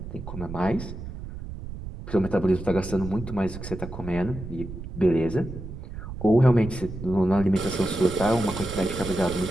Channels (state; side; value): noise; right; rumble, 10 dB below the sound